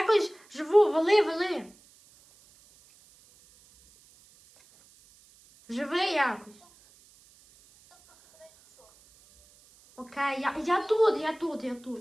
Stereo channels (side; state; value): right; noise; hiss, 28 dB below the sound